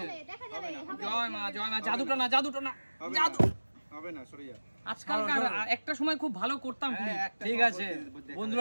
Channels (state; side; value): inverted; both; correlation -1.00